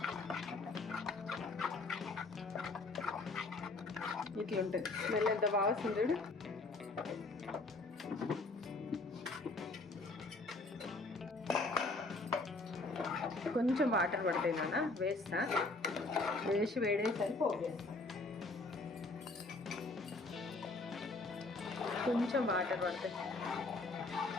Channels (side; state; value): right; quieter; 3.3 dB